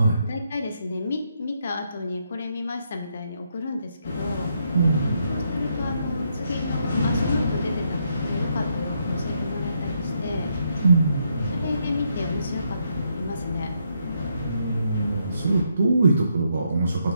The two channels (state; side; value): inverted; both; correlation -0.77